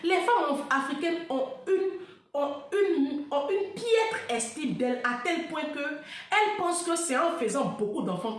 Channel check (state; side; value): identical; both; correlation 1.00